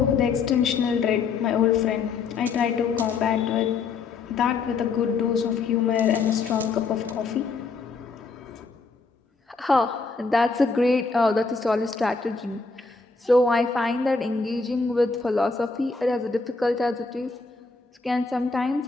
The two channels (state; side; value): quieter; right; 4.5 dB